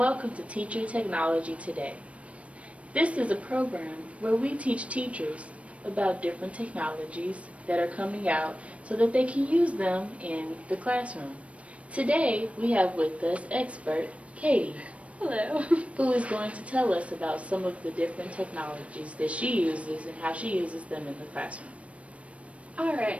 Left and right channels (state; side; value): late; left; 0.063 ms